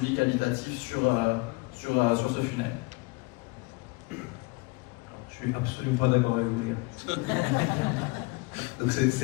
qualitatif sur ce funnel. Je suis absolument pas d'accord avec vous, les gars. Donc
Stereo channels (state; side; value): quieter; right; 26.0 dB